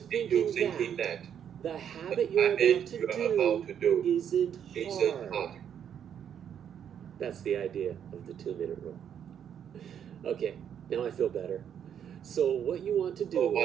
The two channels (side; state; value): left; quieter; 8.8 dB